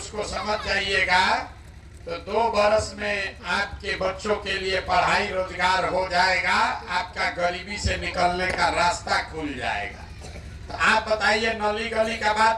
समझ जाइएगा तो 2 बरस में आपके बच्चों के लिए पढ़ाई रोजगार हो जाएगा, आपका गरीबी से निकलने का रास्ता खुल जाएगा। तो आप बताइए, नली गली का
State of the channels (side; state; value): both; identical; correlation 1.00